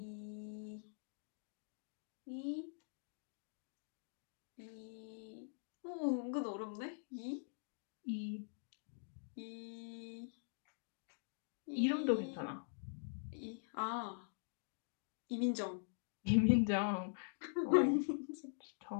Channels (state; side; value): silent; right; digital silence